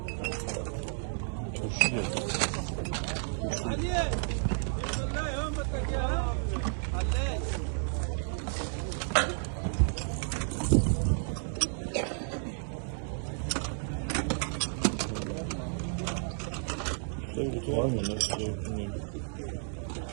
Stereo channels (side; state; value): left; silent; 56 dB below the other